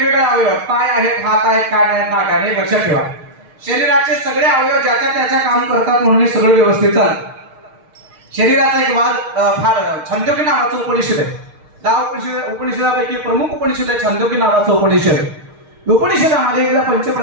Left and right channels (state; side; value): late; left; 6.5 ms